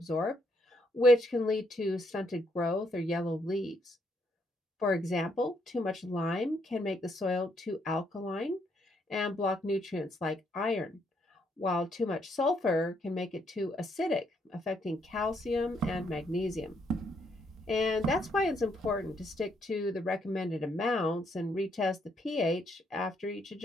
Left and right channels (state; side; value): normal; both; correlation 0.73